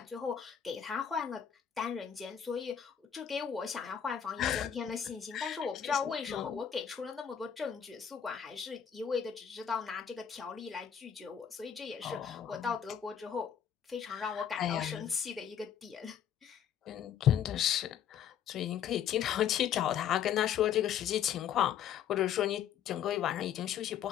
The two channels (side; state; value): right; quieter; 8.8 dB